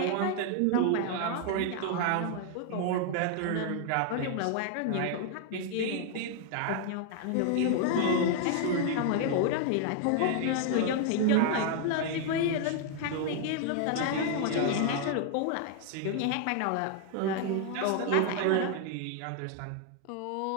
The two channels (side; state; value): both; different; correlation 0.00